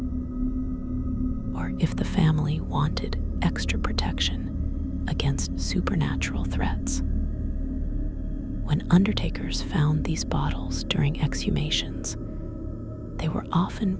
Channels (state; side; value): identical; both; correlation 1.00